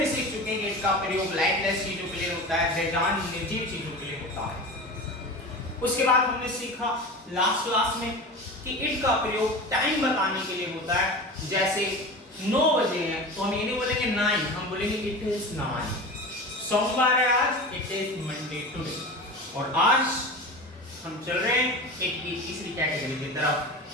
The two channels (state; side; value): normal; both; correlation 0.31